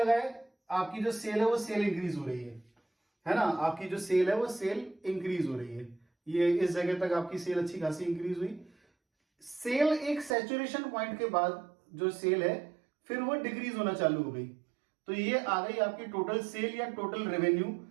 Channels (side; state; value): left; drops out; at 10.4 s